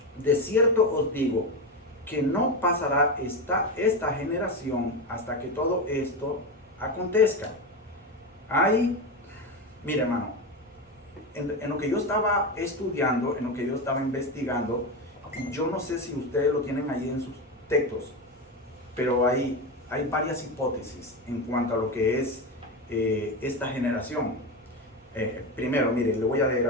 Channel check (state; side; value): normal; both; correlation 0.17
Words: de cierto os digo, que no pasará esta generación hasta que todo esto acontezca. Mire hermano, en lo que yo estaba estudiando, en lo que yo estaba investigando, yo no sé si ustedes lo tienen ahí en sus textos, pero hay varias hipótesis en cuanto a lo que es esta generación. Primero, mire, le voy a leer